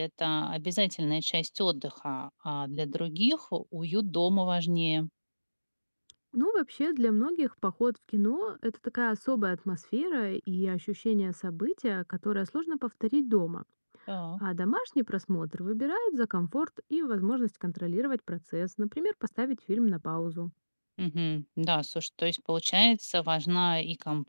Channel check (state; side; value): inverted; both; correlation -1.00